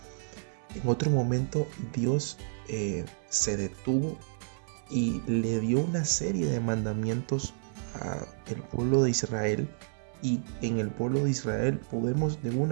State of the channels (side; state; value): left; silent; 58 dB below the other